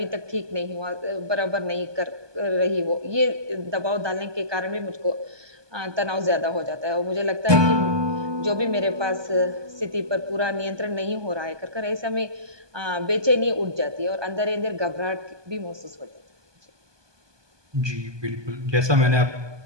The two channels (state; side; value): late; left; 1.2 ms